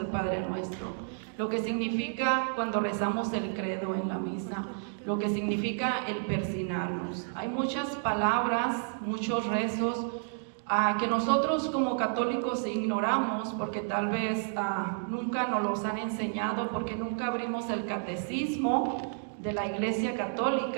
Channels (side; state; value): left; silent; digital silence